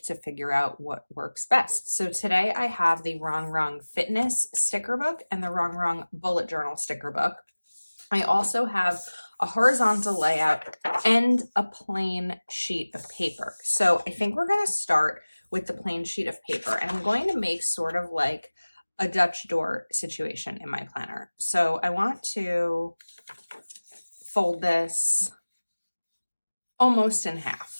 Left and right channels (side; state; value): both; inverted; correlation -1.00